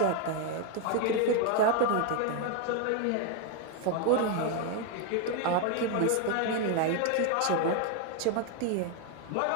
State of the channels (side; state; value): both; different; correlation 0.01